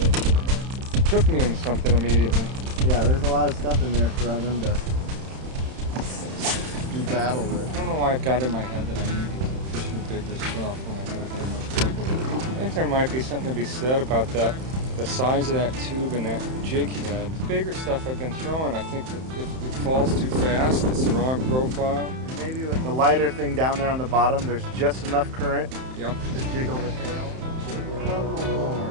took me into something immediately. Yeah, there's a lot of stuff in there for them to do battle with. I don't know why I've got in my head that I need to keep fishing bigger stuff when I haven't had much luck with it. I think there might be something to be said about that. The size of that tube and that jig head. The bigger stuff I've been throwing, I think that if it falls too fast, it's the wrong profile. Maybe with the lighter thing down there on the bottom, there's just enough current Yep. to jiggle the tail.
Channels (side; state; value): left; late; 31 ms